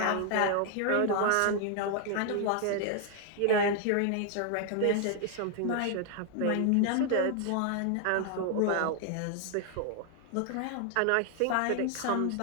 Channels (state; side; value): different; both; correlation 0.00